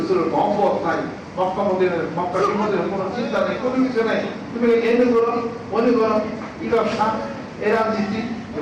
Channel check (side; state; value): both; identical; correlation 1.00